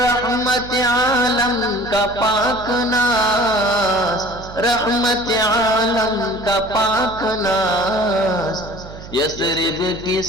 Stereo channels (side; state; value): right; noise; hum, 15 dB below the sound